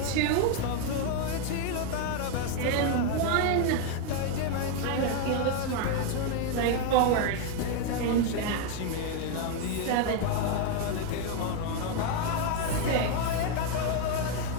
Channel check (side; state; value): both; different; correlation 0.01